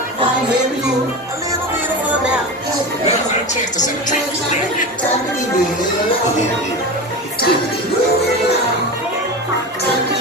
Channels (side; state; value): both; normal; correlation 0.26